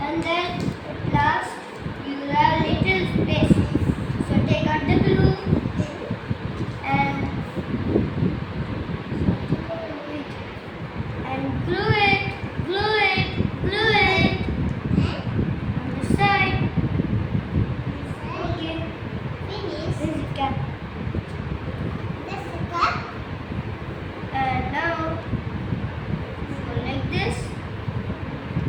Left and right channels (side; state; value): both; identical; correlation 1.00